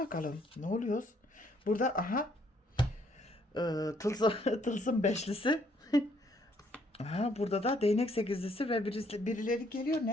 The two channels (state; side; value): normal; both; correlation 0.67